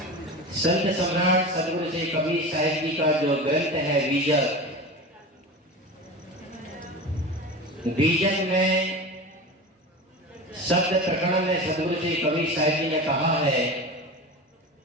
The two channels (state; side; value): normal; both; correlation 0.29